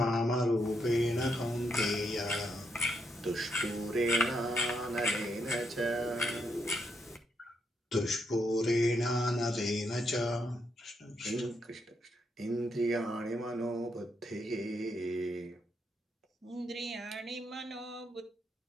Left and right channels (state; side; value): normal; both; correlation 0.79